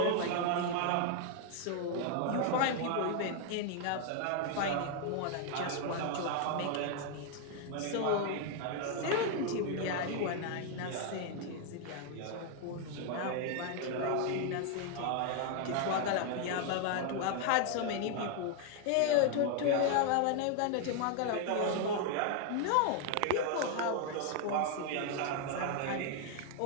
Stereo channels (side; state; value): both; different; correlation 0.00